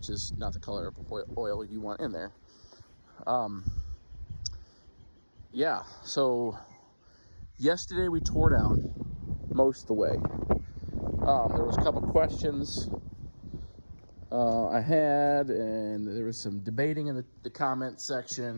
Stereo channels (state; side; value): inverted; both; correlation -1.00